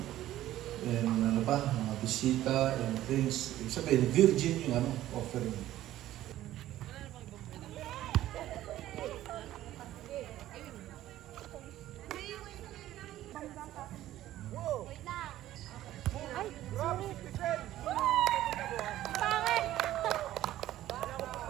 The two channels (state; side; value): quieter; left; 13.9 dB